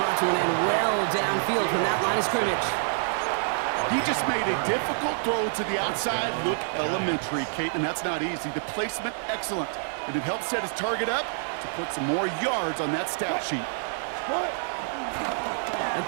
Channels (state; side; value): silent; left; digital silence